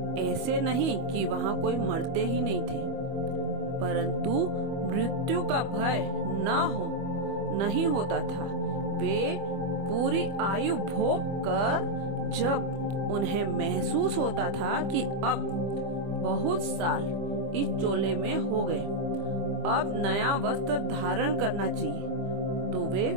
ऐसे नहीं कि वहाँ कोई मरते ही नहीं थे, परंतु मृत्यु का भय नहीं होता था। वे पूरी आयु भोग कर जब उन्हें महसूस होता था कि अब बहुत साल इस चोले में हो गए, अब नया वस्त्र धारण करना चाहिए, तो वे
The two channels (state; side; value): late; left; 25 ms